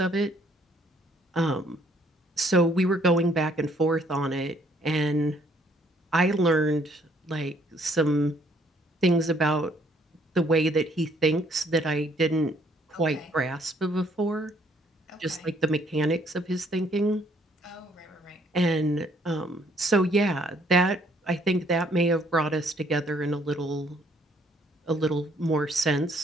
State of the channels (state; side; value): normal; both; correlation 0.65